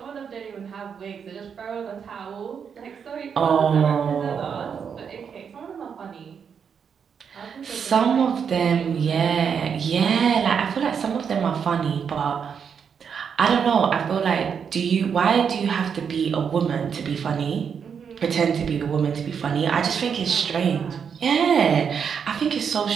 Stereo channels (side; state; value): left; quieter; 7.0 dB